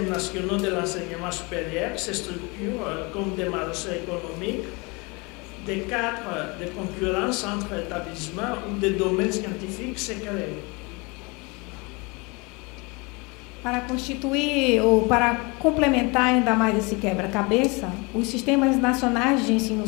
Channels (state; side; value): quieter; right; 27.8 dB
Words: nationaux de l'enseignement supérieur se structurent comme des marchés économiques, des cadres de concurrence entre établissements ou des domaines scientifiques se créent. Para constituir ou para complementar ainda mais esse quebra-cabeça, os sistemas nacionais de ensino